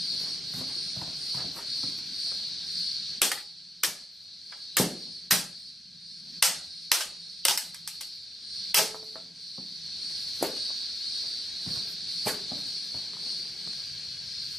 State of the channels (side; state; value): both; normal; correlation 0.82